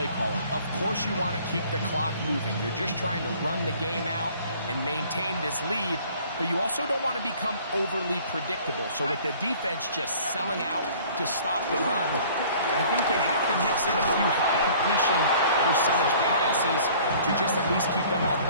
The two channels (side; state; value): both; inverted; correlation -0.52